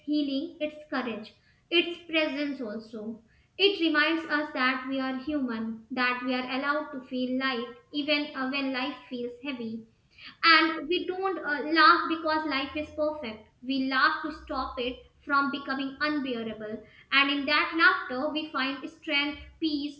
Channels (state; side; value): identical; both; correlation 1.00